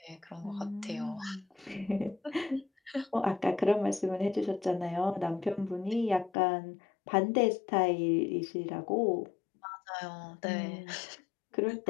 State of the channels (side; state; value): right; drops out; at 6.3 s